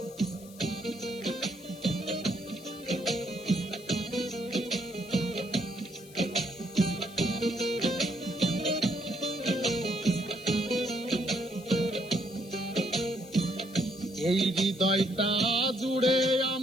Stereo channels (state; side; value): noise; left; hiss, 21 dB below the sound